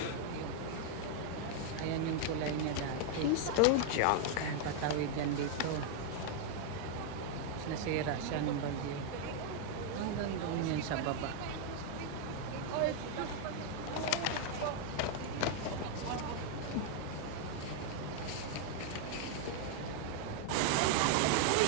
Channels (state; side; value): different; both; correlation 0.00